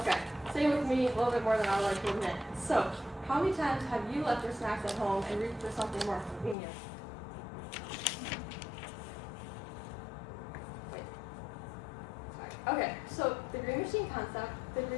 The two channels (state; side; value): drops out; right; at 6.6 s